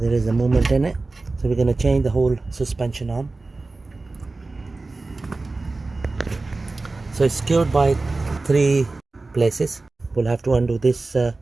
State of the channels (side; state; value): left; quieter; 3.4 dB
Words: is a movement in it, so we're going to change the whole suspension arm. So it's secured by 3 places. We'll have to undo this